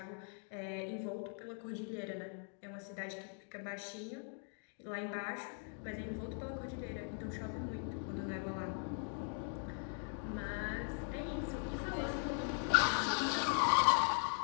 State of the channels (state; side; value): silent; right; 51 dB below the other